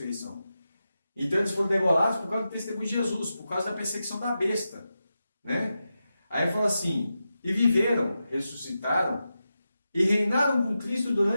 Então eles foram degolados por causa do testemunho de Jesus, por causa da perseguição da besta, né? Aí fala assim, e viveram, ressuscitaram, e reinaram com Cristo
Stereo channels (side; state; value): both; inverted; correlation -0.90